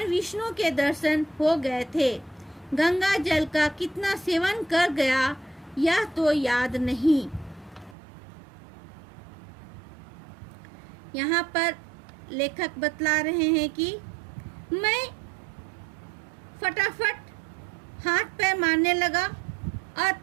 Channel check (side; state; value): left; drops out; at 8.0 s